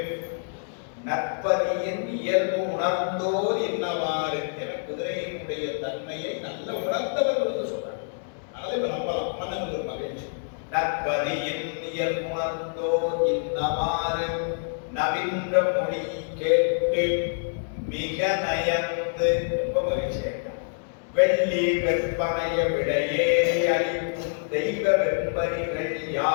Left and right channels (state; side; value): silent; right; 61 dB below the other